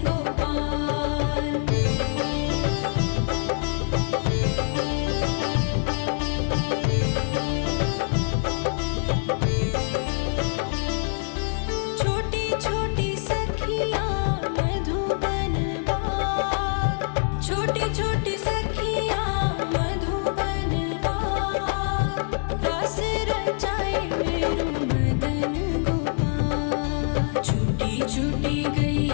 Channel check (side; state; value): right; silent; digital silence